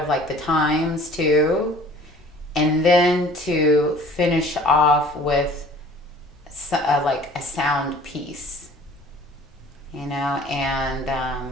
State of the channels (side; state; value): both; normal; correlation 0.49